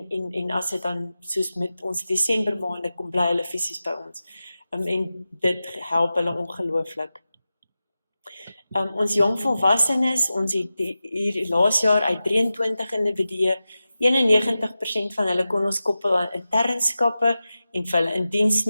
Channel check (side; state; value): both; inverted; correlation -0.94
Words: as dit dan soos met ons Desember maande kom bly hulle fisies by ons. En dit help hulle ongelooflik. Ons jong volwassenes, ons het hier laas jaar uit 23 individue, 91% van hulle kon ons koppel aan internskappe en vir hulle in diens